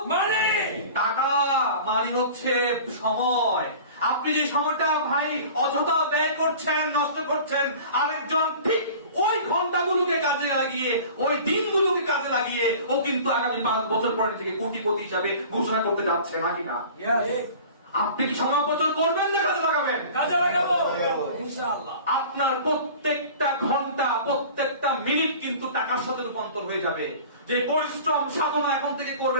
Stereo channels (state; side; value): inverted; both; correlation -0.41